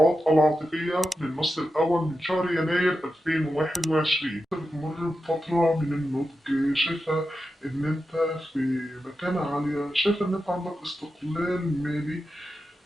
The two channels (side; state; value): both; normal; correlation 0.90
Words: العاطفية للنص الأول من شهر يناير 2021. بتمر بفترة من النضج، شايفة إن أنت في مكانة عالية، شايفة إن أنت عندك استقلال مالي،